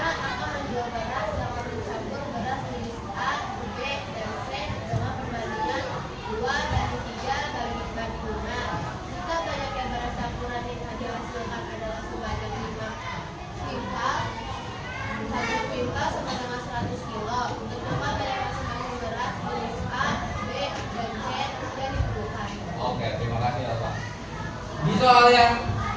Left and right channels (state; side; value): identical; both; correlation 1.00